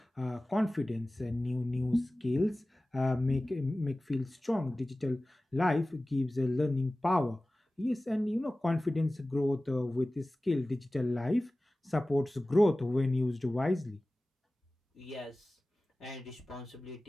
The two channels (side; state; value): both; normal; correlation 0.97